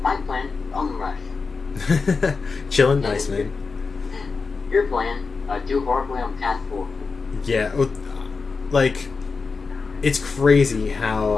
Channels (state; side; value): quieter; right; 4.6 dB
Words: My plan, on the rush. Chilling, nice, man. Your plan, do horribly on path 4. Yeah, like, it's crazy how...